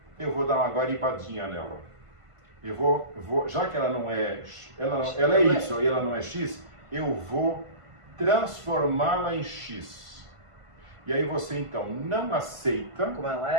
Eu vou dar uma guaribadinha nela. Eu vou, já que ela não é, ela é Y e ela não é X, eu vou transformá-la em X. E aí você então não aceita como ela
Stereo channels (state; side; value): late; left; 1.5 ms